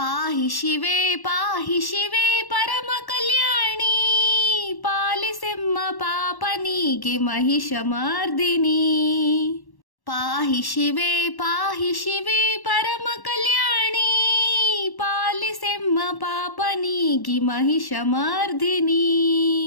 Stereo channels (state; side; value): late; right; 1.1 ms